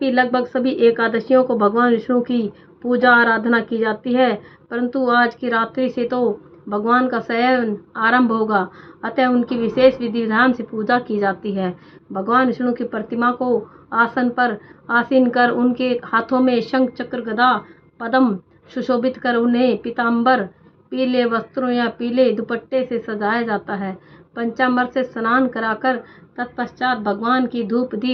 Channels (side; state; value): both; identical; correlation 1.00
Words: लगभग सभी एकादशियों को भगवान विष्णु की पूजा आराधना की जाती है, परंतु आज की रात्रि से तो भगवान का शयन आरंभ होगा, अतः उनकी विशेष विधि विधान से पूजा की जाती है। भगवान विष्णु की प्रतिमा को आसन पर आसीन कर उनके हाथों में शंख चक्र गदा पद्म सुशोभित कर उन्हें पीताम्बर पीले वस्त्रों या पीले दुपट्टे से सजाया जाता है। पंचामृत से स्नान कराकर तत्पश्चात भगवान की धूप